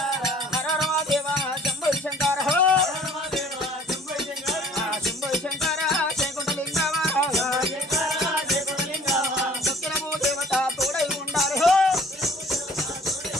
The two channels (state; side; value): normal; both; correlation 0.52